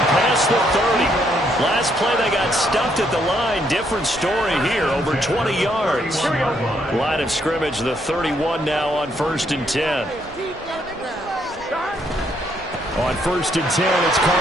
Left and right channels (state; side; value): normal; both; correlation 0.72